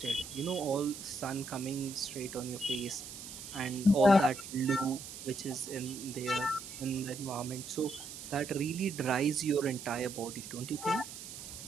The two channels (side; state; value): right; noise; hiss, 11 dB below the sound